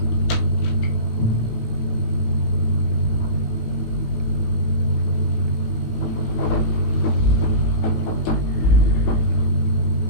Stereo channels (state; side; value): late; right; 18 ms